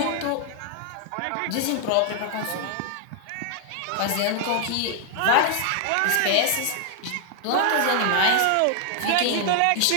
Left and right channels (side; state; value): both; different; correlation 0.00